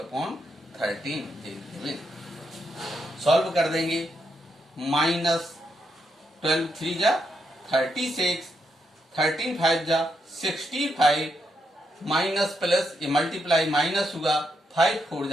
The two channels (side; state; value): both; normal; correlation 0.80